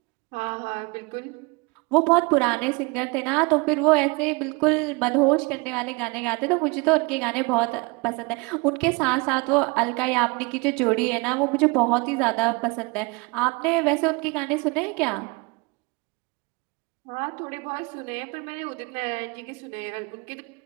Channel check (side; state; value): left; quieter; 28.1 dB